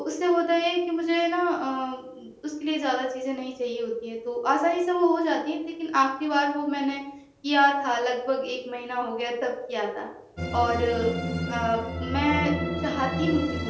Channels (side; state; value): both; identical; correlation 1.00